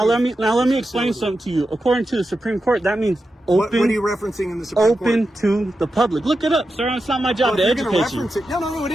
let me explain something to you. According to the Supreme Court, that means What are open you referencing in the Supreme Court? open to the public. Look it up, sir. It's not my job Well, to if you're gonna educate you. reference it, no, it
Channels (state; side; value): normal; both; correlation 0.90